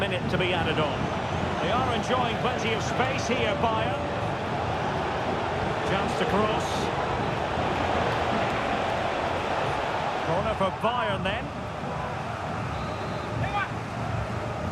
to be added on. They are enjoying plenty of space here, Bayern. Chance to cross. Corner for Bayern then.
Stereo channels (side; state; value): both; identical; correlation 1.00